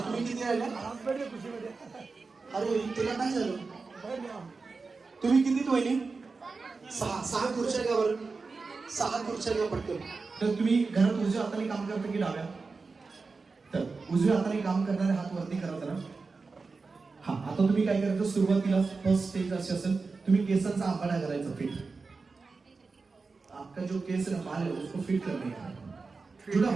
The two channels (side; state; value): left; quieter; 4.3 dB